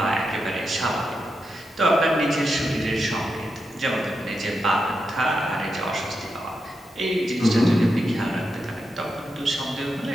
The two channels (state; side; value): normal; both; correlation 0.86